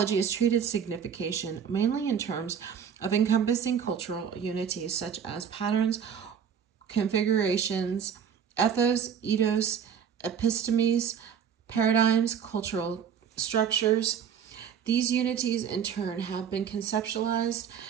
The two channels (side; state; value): left; quieter; 7.7 dB